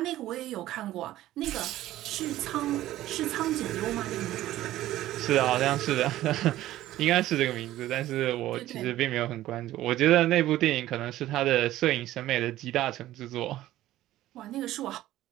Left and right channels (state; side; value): quieter; left; 14.7 dB